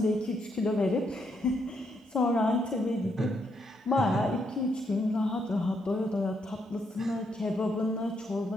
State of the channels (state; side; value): normal; both; correlation 0.77